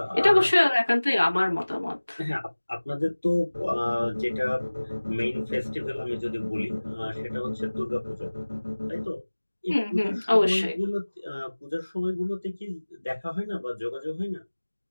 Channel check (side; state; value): both; inverted; correlation -1.00